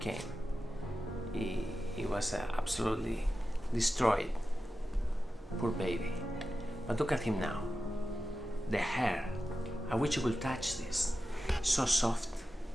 He was absolutely destroyed. Poor baby. But look at him now. The hair. I wish you could touch this. So soft.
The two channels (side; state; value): both; normal; correlation 0.92